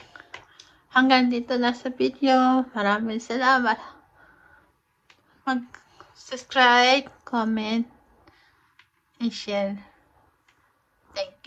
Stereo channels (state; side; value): identical; both; correlation 1.00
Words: Hanggang dito na sa video. Maraming salamat. Mag-subscribe, comment, and share.